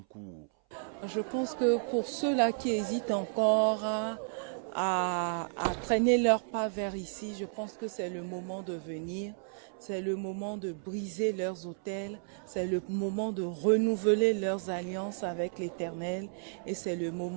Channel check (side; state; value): left; silent; 56 dB below the other